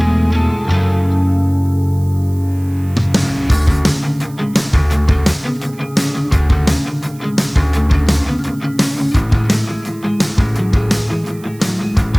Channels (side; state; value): right; noise; hiss, 24 dB below the sound